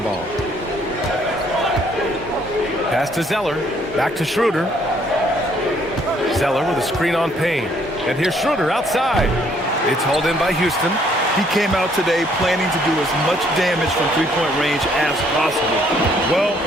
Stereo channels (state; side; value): normal; both; correlation 0.65